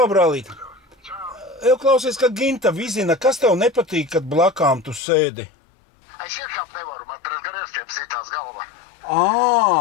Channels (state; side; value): drops out; right; at 5.0 s